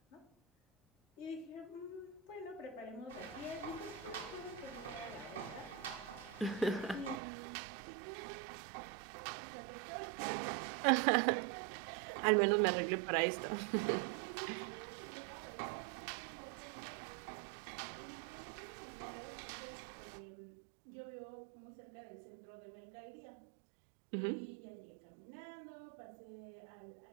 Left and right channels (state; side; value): drops out; left; at 7.2 s